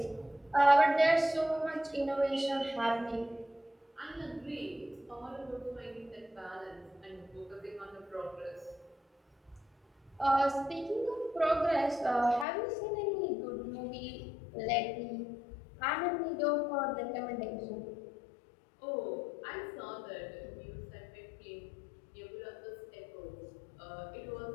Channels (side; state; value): right; drops out; at 12.5 s